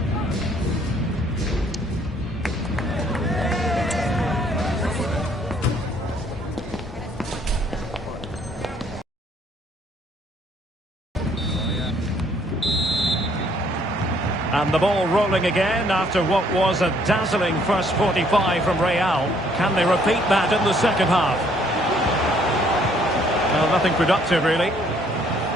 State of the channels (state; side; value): normal; both; correlation 0.64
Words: And the ball rolling again after what was a dazzling first 45 from Real. Can they repeat that in the second half? Well, nothing productive, really.